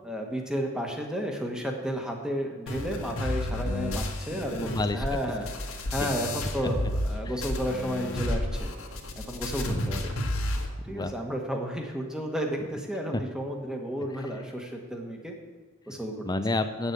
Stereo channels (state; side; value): normal; both; correlation 0.70